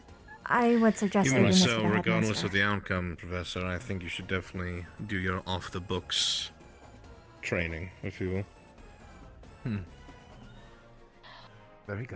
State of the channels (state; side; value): identical; both; correlation 1.00